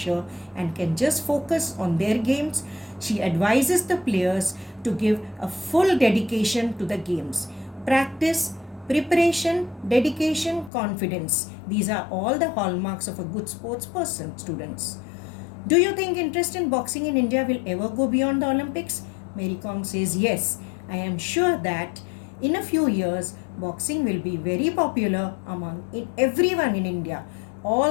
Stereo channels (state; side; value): drops out; right; at 10.7 s